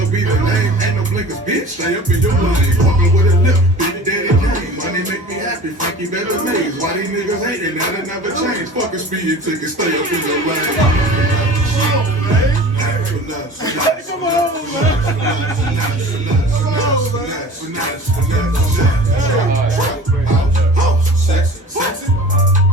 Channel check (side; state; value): both; normal; correlation 0.40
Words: be the name, ain't no blinkers, bitch. Stay up in your lane, walking with a lip, big daddy game. Money make me happy, Frankie better maze. Why these niggas hating, that'll never change. Fuck a speeding ticket, stay up in your lane. Come on,